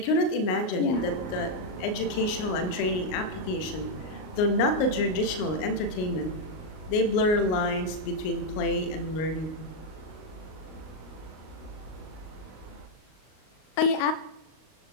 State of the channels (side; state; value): right; late; 38 ms